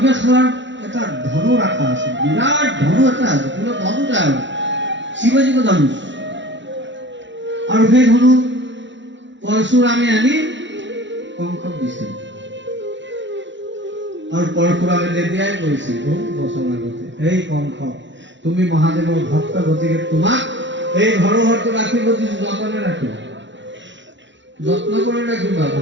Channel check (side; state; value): left; late; 0.54 ms